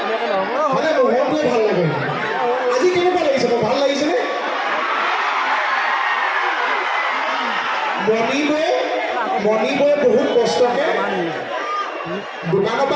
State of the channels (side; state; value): both; identical; correlation 1.00